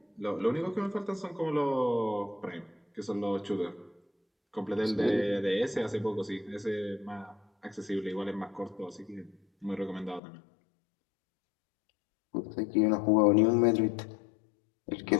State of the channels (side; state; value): right; drops out; at 10.2 s